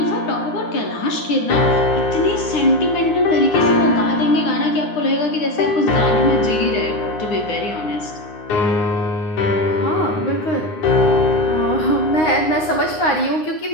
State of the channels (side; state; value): right; late; 9.6 ms